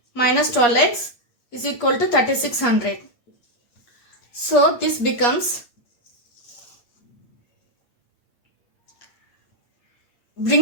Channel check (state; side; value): late; right; 8.7 ms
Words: minus 12x is equal to 3600. So this becomes,